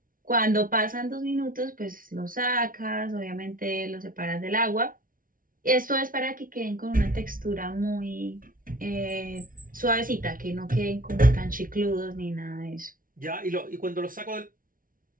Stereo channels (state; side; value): late; left; 0.40 ms